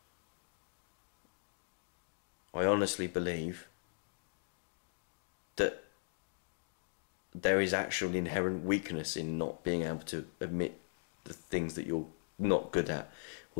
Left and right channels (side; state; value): right; silent; digital silence